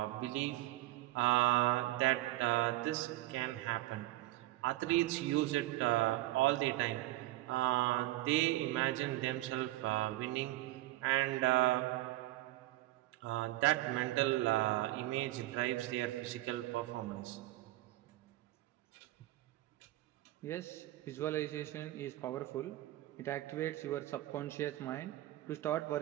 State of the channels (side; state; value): left; quieter; 16.9 dB